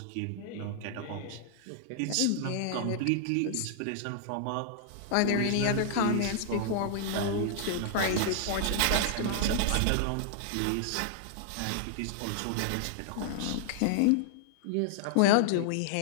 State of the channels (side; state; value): both; different; correlation -0.01